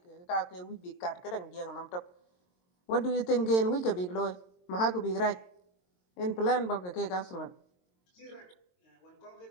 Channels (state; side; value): late; right; 22 ms